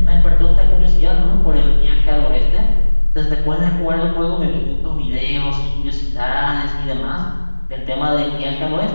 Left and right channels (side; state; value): both; inverted; correlation -1.00